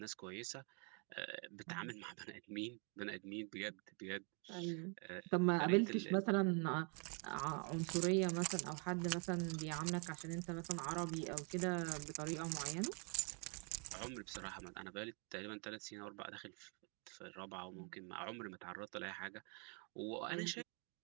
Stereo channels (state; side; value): quieter; left; 37.1 dB